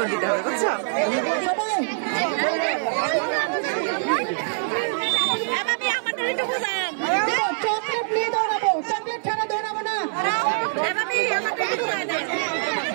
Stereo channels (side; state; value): left; silent; 63 dB below the other